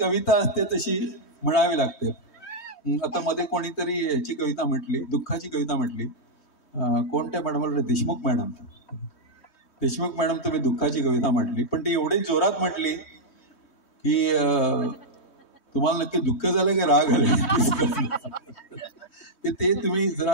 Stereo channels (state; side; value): late; right; 3.1 ms